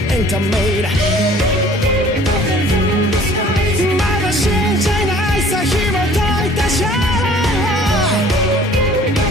エンタメだまだ信じないさ紐解いたシャ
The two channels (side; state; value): both; normal; correlation 0.51